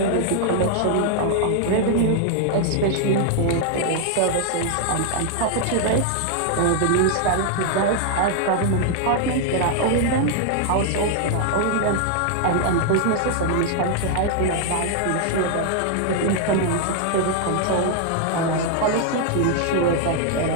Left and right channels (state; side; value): different; both; correlation 0.00